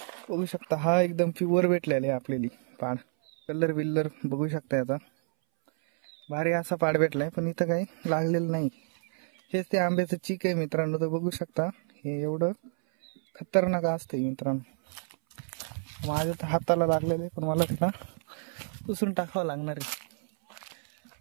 बघू शकता हा एकदम प्युअर भेटलेला आहे आपल्याला पाड. कलर बिल्लर बघू शकता याचा. भारी असा पाड भेटलाय. पण इथं काही लागलेलं नाही. हेच ते आंब्याचं चीक आहे मित्रांनो. तर बघू शकता हे एवढं खतरनाक असतंय मित्रांनो. माझ्या तर हाताला लागलेलं आहे. पण मला त्याला पुसून टाकावं लागणार आहे.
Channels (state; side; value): silent; left; 59 dB below the other